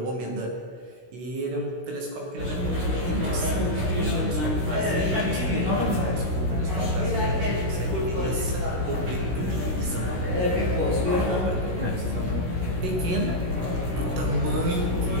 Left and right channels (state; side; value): late; left; 16 ms